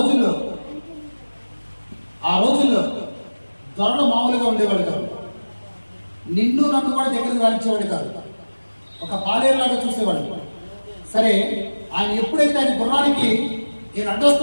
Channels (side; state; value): both; inverted; correlation -1.00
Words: రోజుల్లో దొరలు మామూలుగా ఉండేవాడు కాదు, నిన్ను నన్ను కూడా దగ్గరకు రానిచ్చేవాడు కాదు, ఒక పాలేరులాగా చూసేవాడు. సరే ఆయన ఎప్పుడైతే ఆయన గుర్రానికి నేను